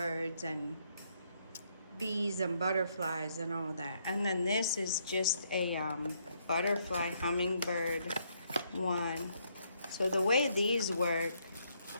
and bees and butterflies and all that. And then this is just a butterfly hummingbird one. So the way these work,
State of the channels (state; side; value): inverted; both; correlation -0.72